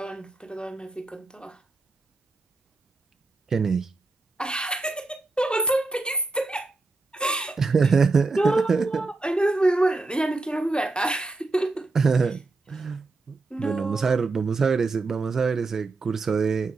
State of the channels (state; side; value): quieter; left; 3.5 dB